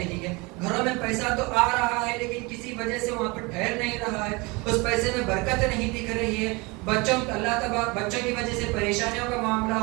ہے، گھروں میں پیسہ تو آ رہا ہے لیکن کسی وجہ سے وہاں پر ٹھہر نہیں رہا ہے، اس پیسے میں برکت نہیں دکھ رہی ہے، بچوں کی وجہ سے پریشانیوں کا معاملہ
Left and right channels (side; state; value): left; quieter; 26.0 dB